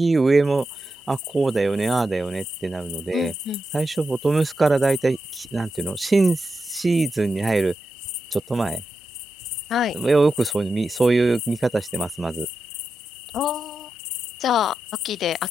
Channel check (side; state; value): both; normal; correlation 0.88